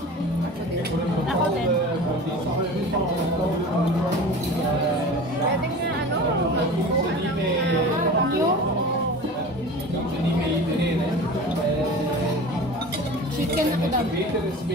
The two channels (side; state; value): both; normal; correlation 0.36